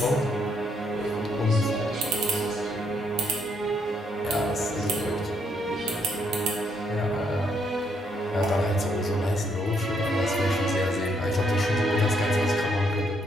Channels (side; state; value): both; normal; correlation 0.73